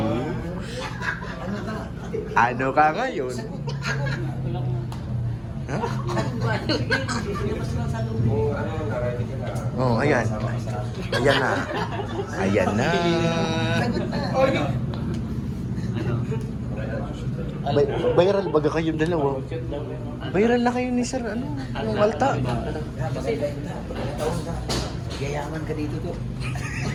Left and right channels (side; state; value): both; identical; correlation 1.00